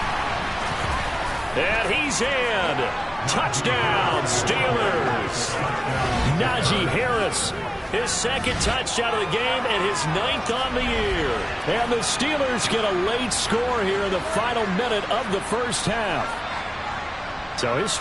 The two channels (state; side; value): identical; both; correlation 1.00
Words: And he's in. Touchdown, Steelers. Najee Harris, his second touchdown of the game and his 9th on the year. And the Steelers get a late score here in the final minute of the first half. So his